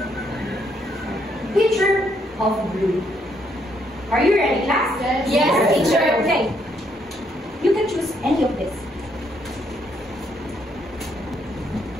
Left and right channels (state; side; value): normal; both; correlation 0.72